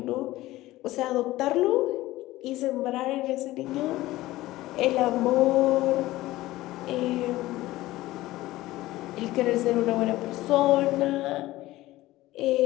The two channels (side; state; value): right; quieter; 17.2 dB